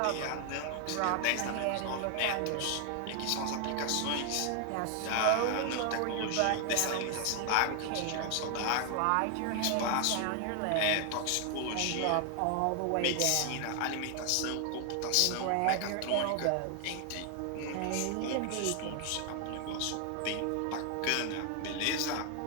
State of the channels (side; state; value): both; different; correlation 0.00